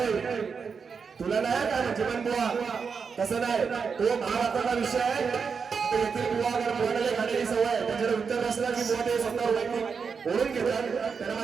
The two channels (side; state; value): left; quieter; 5.7 dB